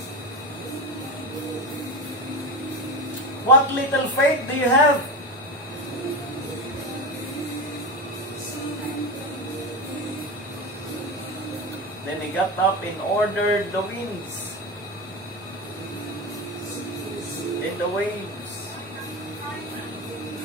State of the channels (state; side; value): normal; both; correlation 0.21